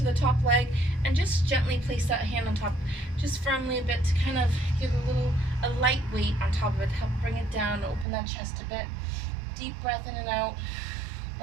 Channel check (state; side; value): drops out; left; at 8.1 s